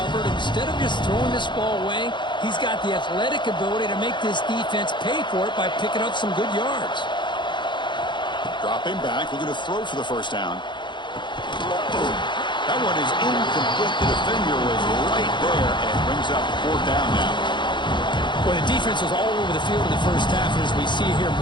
Instead of just throwing this ball away, he's got the athletic ability to make this defense pay for it by picking up some good yards. Dropping back, looking to throw for the first down. That one is incomplete. The defender was right there and brings up 4th down now. Well, the defense was all over the field in the first half, and as we see here,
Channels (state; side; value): late; right; 0.23 ms